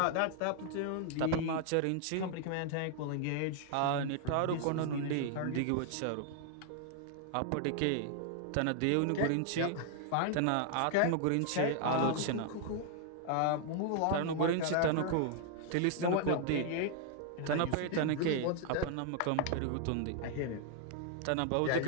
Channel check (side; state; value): both; different; correlation 0.00